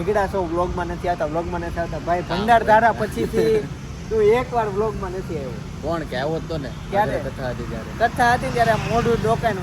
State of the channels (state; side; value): identical; both; correlation 1.00